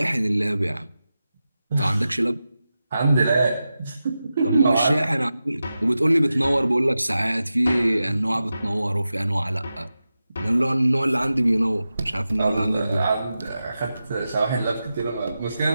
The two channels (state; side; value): inverted; both; correlation -0.92